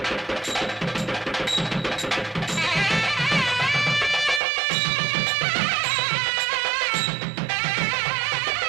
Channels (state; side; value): drops out; left; at 4.4 s